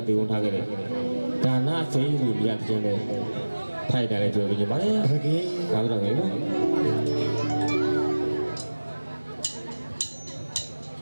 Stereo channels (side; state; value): both; inverted; correlation -1.00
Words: တည်ဝန်ထားခဲ့တယ်ဒါနစိမ့်လူမြတ်တဲ့လေထိုက်တယ်လေပြောပြကြပါလေဟုတ်ကဲ့ဒါတော့ငယ်နော်